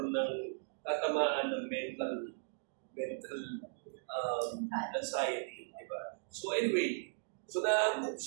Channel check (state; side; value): silent; left; digital silence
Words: ng tatamaan ng mental anxiety, di ba? So anyway, so naangkop